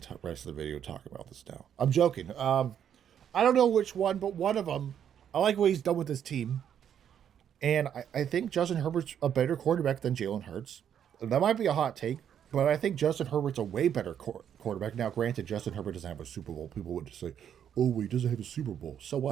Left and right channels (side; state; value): left; quieter; 9.1 dB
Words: rest of the video talking about this now. I'm joking. I don't know which one, but one of them. I like what he's done with his team, and I think Justin Herbert's a better quarterback than Jalen Hurts. That might be a hot take, but I think Justin Herbert's a way better quarterback. Now, granted, Justin Herbert doesn't have a Super Bowl. People would just say, "Oh, well, he doesn't have a Super Bowl." So